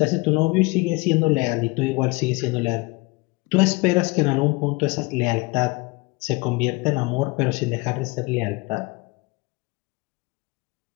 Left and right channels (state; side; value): quieter; right; 25.4 dB